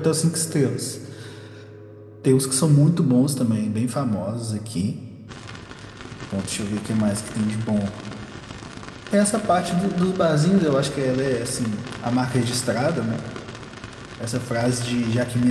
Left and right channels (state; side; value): identical; both; correlation 1.00